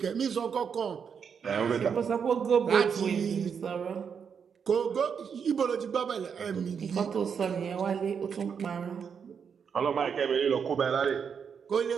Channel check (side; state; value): left; quieter; 6.8 dB